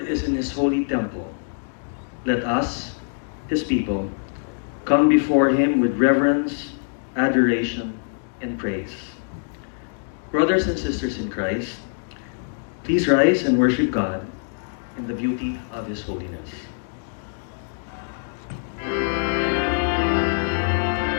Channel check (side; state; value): right; silent; digital silence